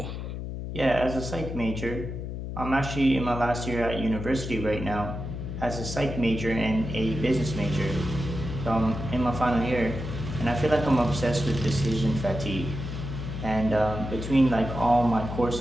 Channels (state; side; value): noise; left; hum, 6 dB below the sound